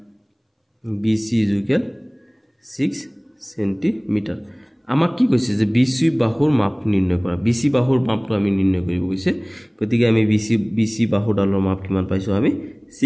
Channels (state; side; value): identical; both; correlation 1.00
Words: BC ইকুয়াল 6 সেন্টিমিটার আমাক কি কৈছে যে BC বাহুৰ মাপ নিৰ্ণয় কৰা BC বাহুৰ মাপটো আমি নিৰ্ণয় কৰিব কৈছে গতিকে আমি BC বাহুডালৰ মাপ কিমান পাইছো আমি